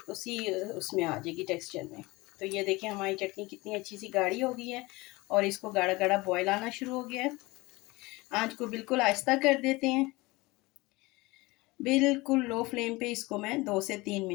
उसमें आ जाएगी टेक्सचर में। तो ये देखिए हमारी चटनी कितनी अच्छी सी गाढ़ी हो गई है, और इसको गाढ़ा गाढ़ा बॉयल आना शुरू हो गया है। आंच को बिल्कुल आहिस्ता कर देते हैं, बिल्कुल लो फ्लेम पे इसको मैं 2 से 3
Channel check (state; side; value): quieter; right; 22.2 dB